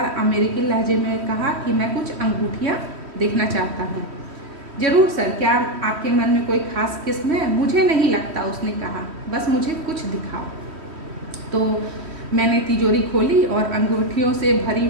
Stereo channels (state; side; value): late; left; 3.1 ms